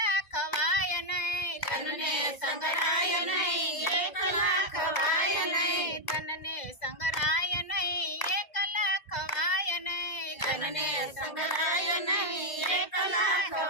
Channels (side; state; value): right; late; 2.1 ms